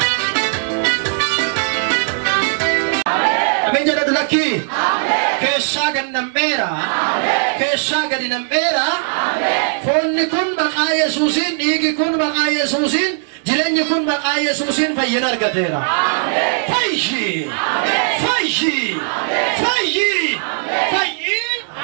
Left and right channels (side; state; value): left; silent; digital silence